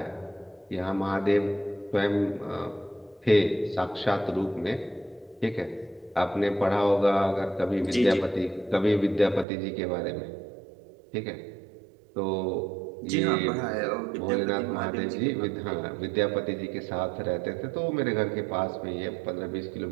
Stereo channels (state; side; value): drops out; left; at 9.5 s